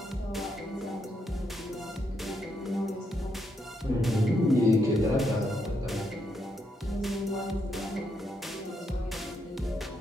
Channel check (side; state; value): both; normal; correlation 0.79